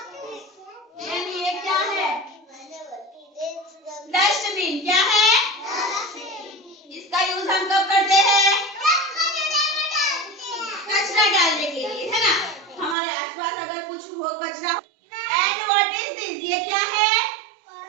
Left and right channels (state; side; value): drops out; left; at 13.0 s